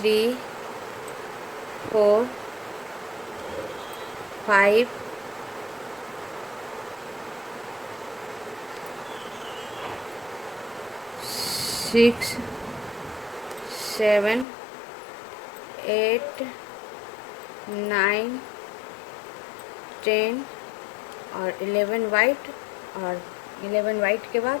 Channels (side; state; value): right; drops out; at 14.5 s